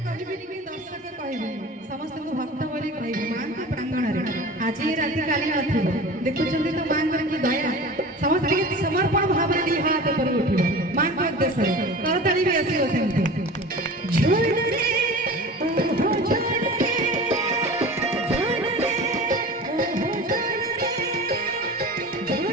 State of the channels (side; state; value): both; normal; correlation 0.36